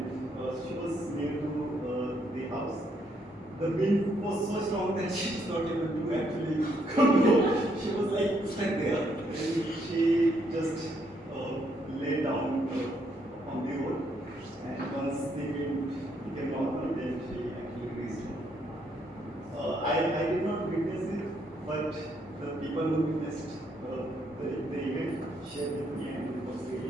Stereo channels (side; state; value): both; normal; correlation 0.73